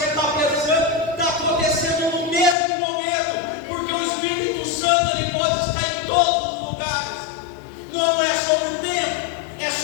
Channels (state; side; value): drops out; right; at 2.6 s